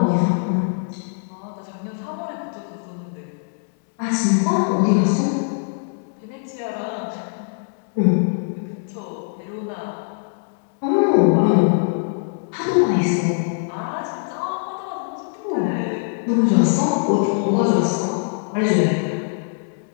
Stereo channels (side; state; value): right; silent; digital silence